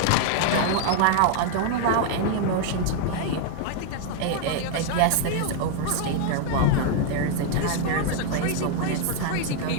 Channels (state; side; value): different; both; correlation 0.00